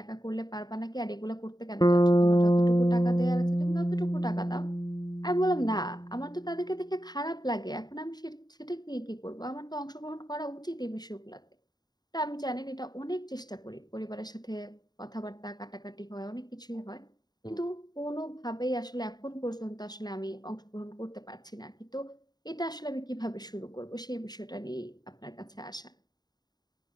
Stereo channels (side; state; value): right; late; 0.20 ms